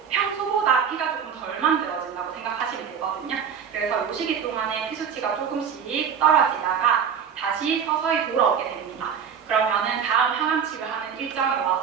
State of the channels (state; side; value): quieter; left; 7.4 dB